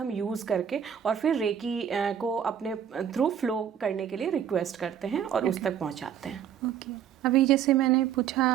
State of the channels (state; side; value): quieter; left; 8.9 dB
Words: यूज़ करके और फिर रेकी को अपने थ्रू फ्लो करने के लिए रिक्वेस्ट करते हैं और उस तक पहुंचाते हैं। ओके, अभी जैसे मैंने